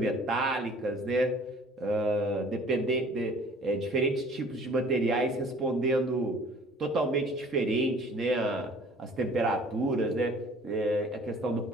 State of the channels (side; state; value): both; normal; correlation 0.51